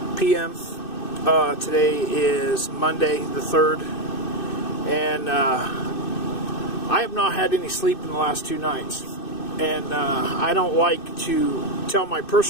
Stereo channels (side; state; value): right; late; 2.6 ms